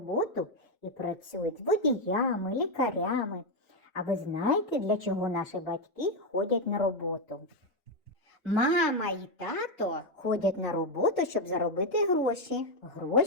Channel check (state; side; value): normal; both; correlation 0.05